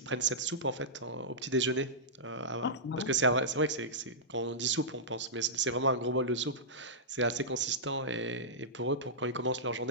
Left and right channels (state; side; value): normal; both; correlation -0.14